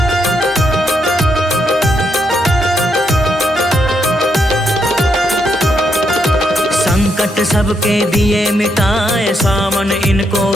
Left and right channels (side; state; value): both; normal; correlation 0.78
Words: संकट सबके दिए मिटाए। सावन इनको